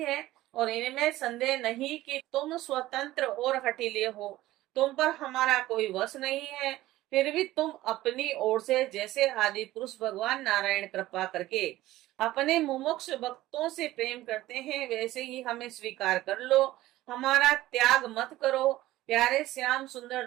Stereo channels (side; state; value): left; quieter; 16.2 dB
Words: और इनमें संदेह नहीं कि तुम स्वतंत्र और हठीले हो, तुम पर हमारा कोई वश नहीं है। फिर भी तुम अपनी ओर से जैसे आदि पुरुष भगवान नारायण कृपा करके अपने मुमुक्ष भक्तों से प्रेम करते हैं, वैसे ही हमें स्वीकार कर लो, हमारा त्याग मत करो। प्यारे श्याम सुंदर,